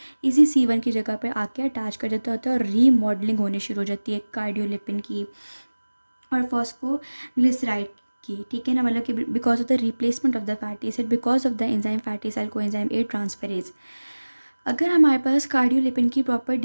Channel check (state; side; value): inverted; both; correlation -1.00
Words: इसी C1 की जगह पे आके अटैच कर देता होता है और रीमॉडलिंग होनी शुरू हो जाती है कार्डियोलिपिन की और फॉस्फोग्लिसराइड की। ठीक है ना, मतलब कि because of the replacement of the fatty acid because of the enzyme fatty acyl coenzyme A transferase. अगर हमारे पास कार्डियोलिपिन की प्रॉपर